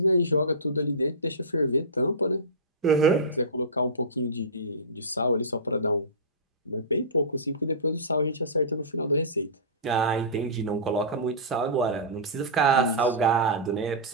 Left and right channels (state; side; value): normal; both; correlation -0.20